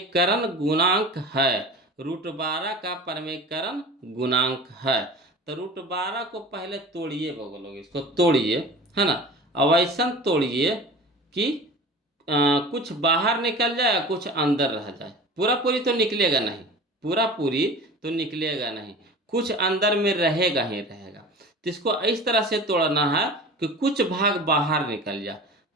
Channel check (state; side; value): normal; both; correlation 0.37